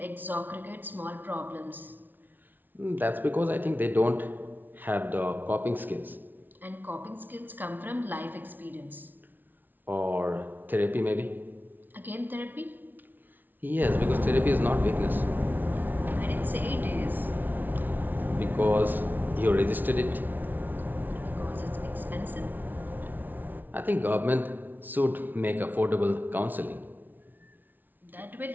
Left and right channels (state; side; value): late; left; 0.087 ms